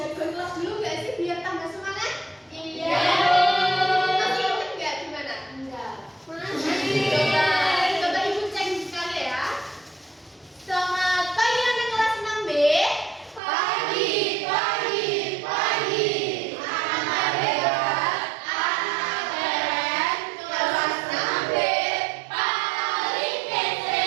kelas dulu nggak sih biar tambah semangat? Iya. Masih ingat nggak gimana? Enggak. Masih. Coba ibu cek sekali ya. Selamat pagi anak kelas 6B. Pagi, pagi, pagi. Anak hebat, anak keren. Kelas 6B paling kece.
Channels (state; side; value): drops out; left; at 13.4 s